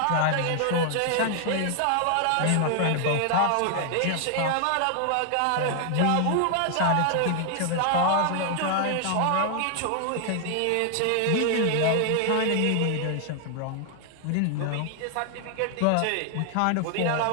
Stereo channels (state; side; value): different; both; correlation 0.00